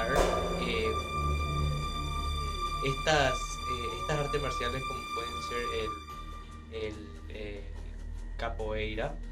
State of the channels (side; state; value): both; identical; correlation 1.00